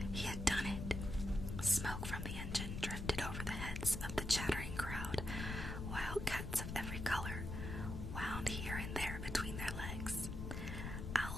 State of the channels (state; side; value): noise; left; rumble, 4 dB below the sound